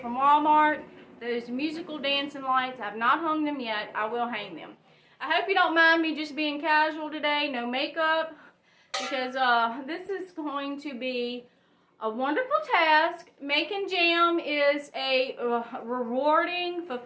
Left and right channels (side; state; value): both; identical; correlation 1.00